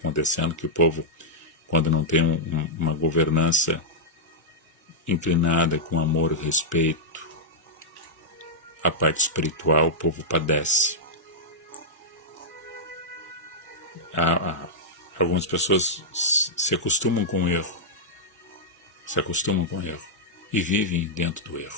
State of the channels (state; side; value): normal; both; correlation -0.06